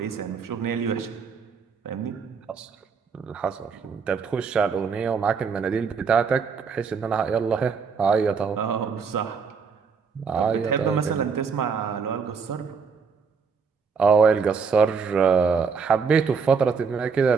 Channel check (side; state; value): left; quieter; 5.6 dB